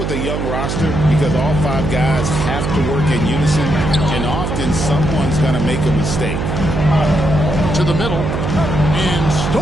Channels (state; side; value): noise; right; hum, 2 dB below the sound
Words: a young roster because all 5 guys have to work in unison, and often someone's going to make a mistake. To the middle, and